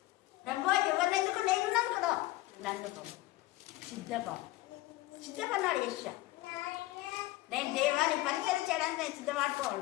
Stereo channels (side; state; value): right; quieter; 18.1 dB